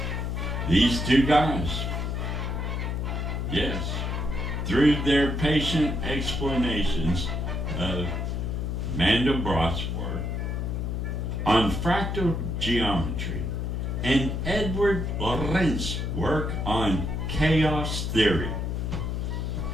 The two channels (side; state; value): left; noise; hum, 2 dB below the sound